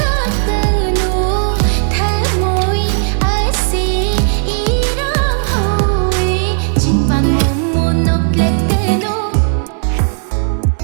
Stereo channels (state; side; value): silent; left; digital silence